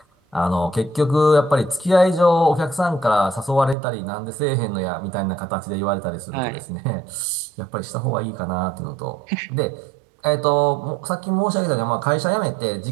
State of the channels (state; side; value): drops out; left; at 3.8 s